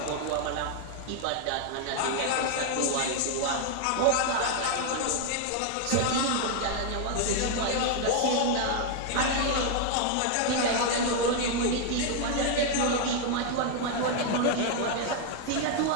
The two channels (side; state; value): both; different; correlation 0.00